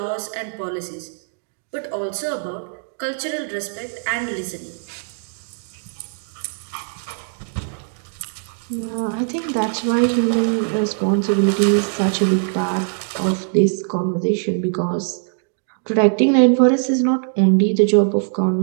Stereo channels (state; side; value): silent; left; digital silence